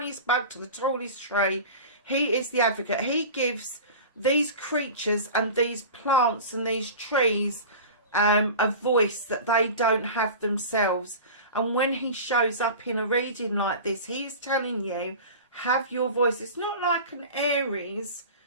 bug to the tallest tree. He is the advocate. He gives these creatures and these plants and these trees a voice that they don't have themselves. And when he shows up in a reading like this, he is telling you, have your voice. It's not like an Aries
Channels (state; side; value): inverted; both; correlation -0.35